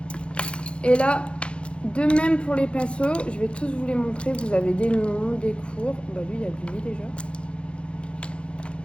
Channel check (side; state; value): right; late; 0.058 ms